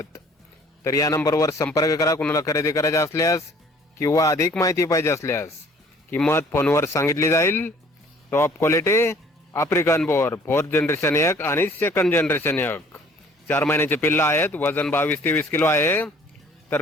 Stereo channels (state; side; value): normal; both; correlation 0.55